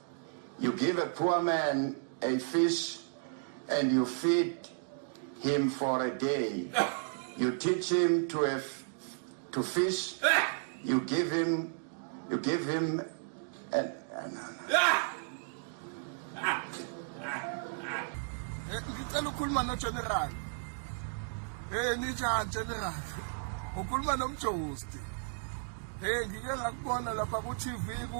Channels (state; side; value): silent; left; digital silence